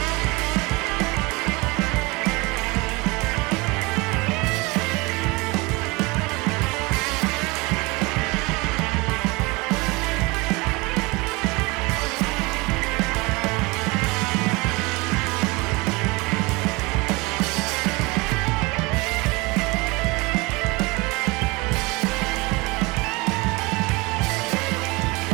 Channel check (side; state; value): left; quieter; 25.2 dB